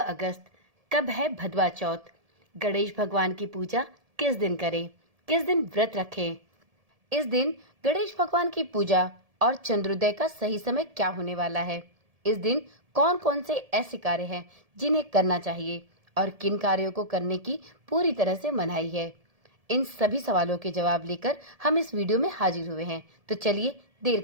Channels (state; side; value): late; left; 1.7 ms